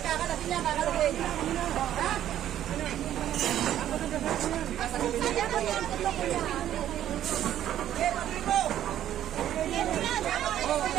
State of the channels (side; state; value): left; quieter; 11.5 dB